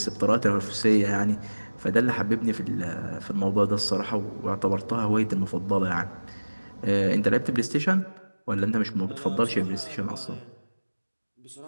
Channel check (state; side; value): inverted; both; correlation -1.00